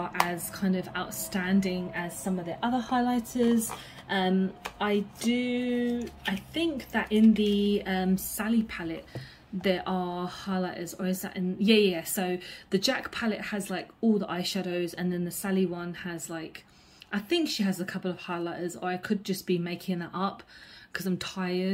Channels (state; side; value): identical; both; correlation 1.00